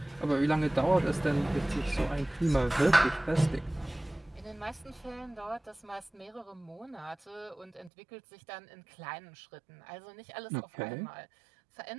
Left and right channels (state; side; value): drops out; left; at 7.9 s